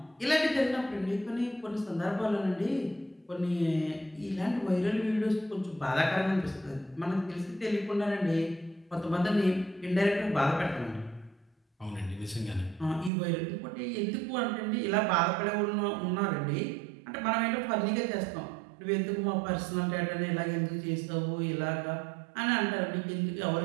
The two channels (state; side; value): drops out; left; at 13.1 s